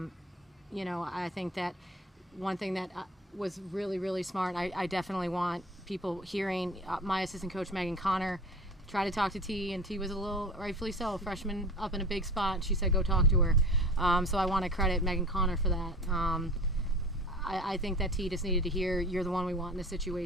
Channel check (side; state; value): both; normal; correlation 0.38